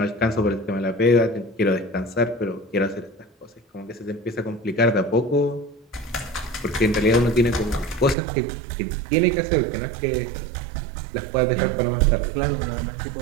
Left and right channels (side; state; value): left; drops out; at 8.2 s